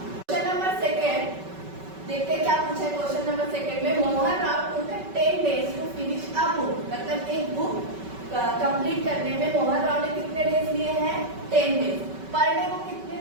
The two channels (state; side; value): late; left; 5.3 ms